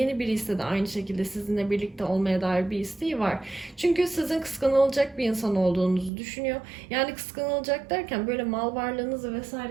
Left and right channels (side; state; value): left; drops out; at 6.1 s